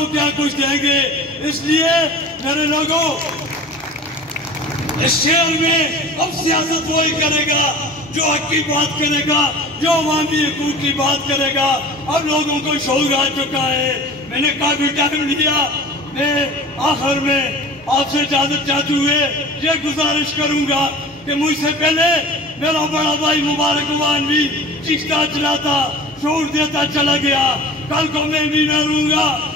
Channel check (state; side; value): normal; both; correlation 0.39